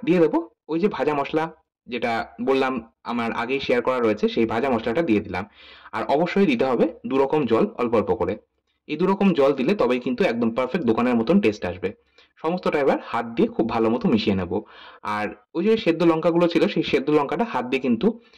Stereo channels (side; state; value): both; identical; correlation 1.00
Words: দিয়ে দেবো ওই যে ভাজা মসলা যেটা বললাম আমার আগেই শেয়ার করা রয়েছে সেই ভাজা মশলাটা দিয়ে দিলাম। আর অবশ্যই দিতে হবে 2 রকম জল অল্প অল্প করে। এই 2 রকম জল দিলে তবেই কিন্তু একদম পারফেক্ট দোকানের মতন টেস্ট আসবে। সমস্তটা এবার হাত দিয়ে খুব ভালো মতো মিশিয়ে নেব। আর ওই যে সেদ্ধ লঙ্কাগুলো ছিল সেই সেদ্ধ লঙ্কাটা হাত দিয়ে কিন্তু